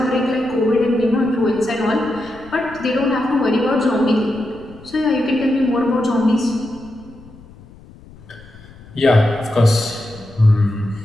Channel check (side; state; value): left; noise; rumble, 22 dB below the sound